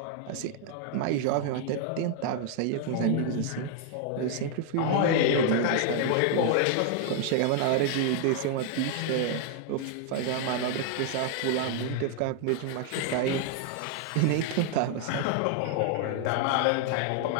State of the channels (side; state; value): both; different; correlation 0.00